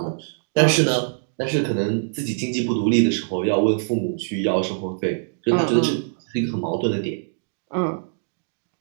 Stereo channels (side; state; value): left; silent; digital silence